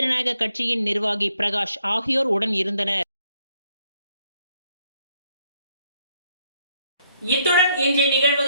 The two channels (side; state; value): both; inverted; correlation -0.72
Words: கட்சியின் நிர்வாகி பிரகாஷ் ஆகியோர் உடன் இருந்தனர். இத்துடன் இன்றைய